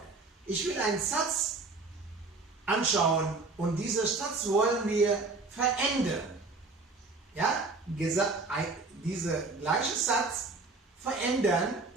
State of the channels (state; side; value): quieter; left; 3.7 dB